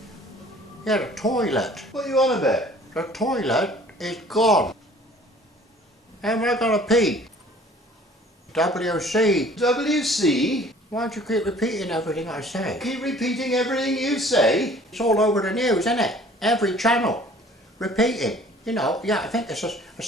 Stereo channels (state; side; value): normal; both; correlation 0.52